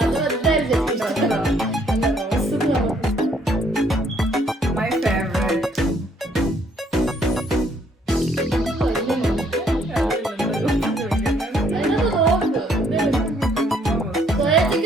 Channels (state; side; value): normal; both; correlation 0.66